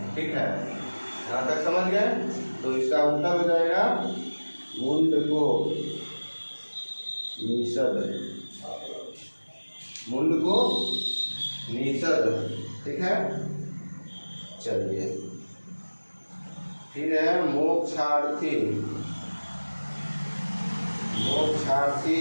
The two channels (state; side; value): inverted; both; correlation -1.00